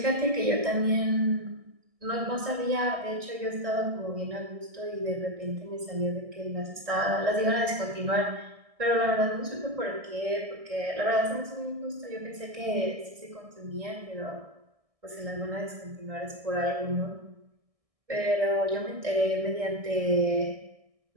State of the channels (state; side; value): late; left; 1.6 ms